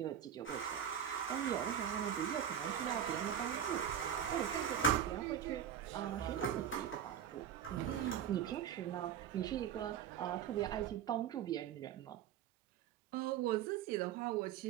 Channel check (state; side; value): quieter; left; 9.2 dB